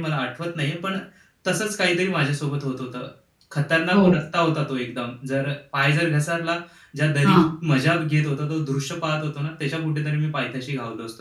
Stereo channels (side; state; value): both; identical; correlation 1.00